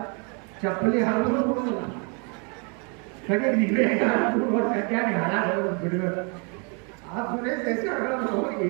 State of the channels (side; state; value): left; quieter; 35.4 dB